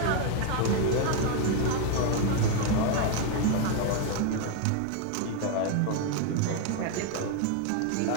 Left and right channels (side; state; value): both; different; correlation 0.01